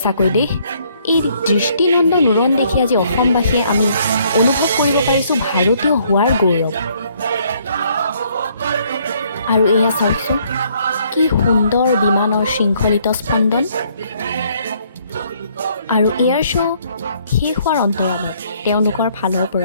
দেই, এই দৃষ্টিনন্দন উৰণ দেখি আজি অসমবাসীয়ে আমি অনুভৱ কৰিব পাৰিছোঁ ভাৰতীয় হোৱাৰ গৌৰৱ। আৰু এয়া চাওকচোন, কি সুন্দৰ বিমানৰ শৃংখলিত স্পন্দন। আৰু এয়াৰ শ্ব' শেষ হোৱাৰ অন্তৰালত তেওঁলোকৰ ফালৰ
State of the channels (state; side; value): inverted; both; correlation -0.66